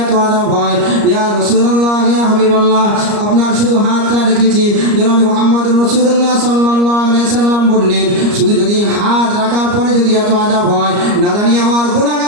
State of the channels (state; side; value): late; left; 34 ms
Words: এত আযাব হয়, ইয়া রাসূলুল্লাহ, ইয়া হাবিবাল্লাহ, আপনার শুধু হাতটা রেখেছি। জনাব মুহাম্মদুর রাসূলুল্লাহ সাল্লাল্লাহু আলাইহি সাল্লাম বললেন, শুধু যদি হাত রাখার পরে যদি এত আযাব হয়, না জানি আমার